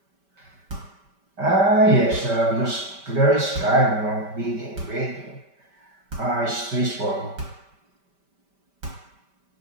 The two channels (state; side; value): late; left; 5.1 ms